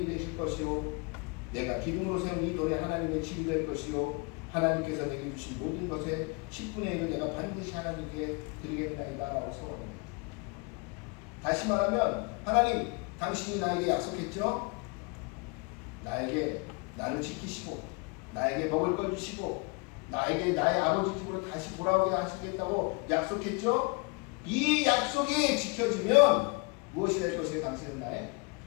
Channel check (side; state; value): right; quieter; 30.2 dB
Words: 되실 것이요 내가 기둥으로 세운 이 돌에 하나님의 집이 될 것이요 하나님께서 내게 주신 모든 것의 10분의 1을 내가 반드시 하나님께 드리겠나이다 라고 서원합니다. 다시 말하면 하나님, 당신이 나에게 약속했죠? 나를 지키시고 나에게 먹을 걸 주시고 나에게 나의 아버지 집으로 다시 돌아오게 하시겠다고 약속했죠? 이 약속이 지켜지면 무엇이 될 것이에요? 당신은 나의